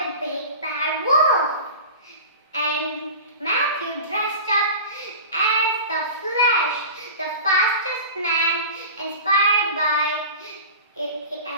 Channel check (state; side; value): inverted; both; correlation -0.34